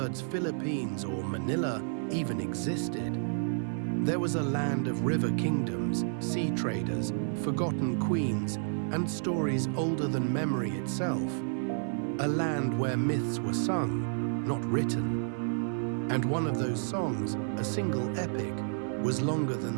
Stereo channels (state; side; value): silent; left; digital silence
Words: Philippines or Manila even existed, there was a land of river kingdoms, sea traders, forgotten queens, and stories older than memory itself. A land where myths were sung, not written. And one of those songs, a single epic, was longer than